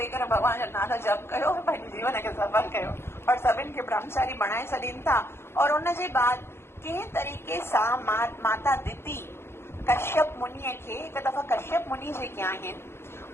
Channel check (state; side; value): late; right; 0.12 ms